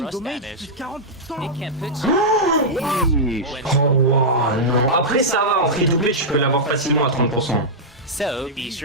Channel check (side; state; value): both; normal; correlation -0.07